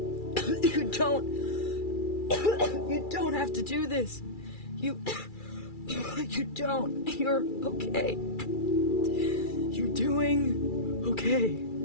You don't have to do this. You don't. You're okay. You're doing okay.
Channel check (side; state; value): right; late; 2.3 ms